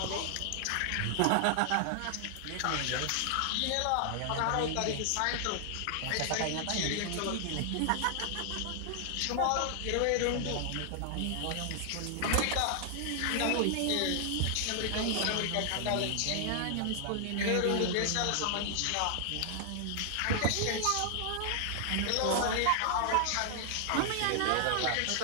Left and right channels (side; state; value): both; different; correlation 0.00